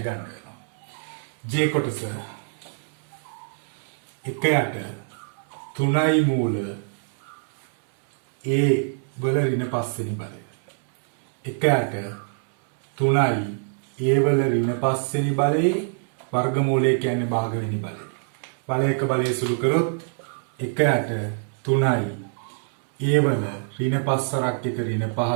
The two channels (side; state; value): left; silent; digital silence